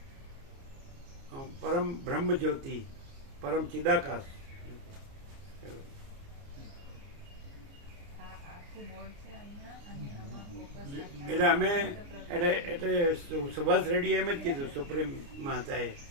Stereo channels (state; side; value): late; left; 29 ms